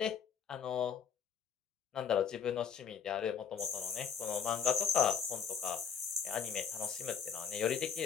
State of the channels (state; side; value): quieter; right; 7.4 dB